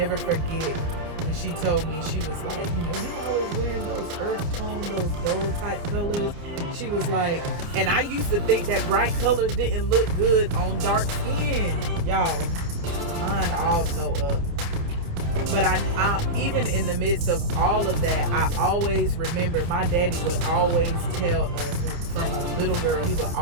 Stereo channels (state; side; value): late; left; 29 ms